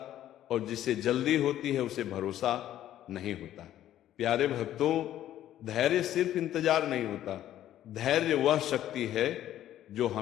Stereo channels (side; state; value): right; quieter; 12.3 dB